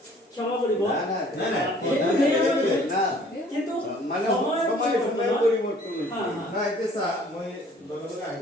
ক্ষমা কৰিব না কিন্তু মানে সময় পৰিবৰ্তন না এতিয়া চা মই লগে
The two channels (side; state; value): both; normal; correlation 0.55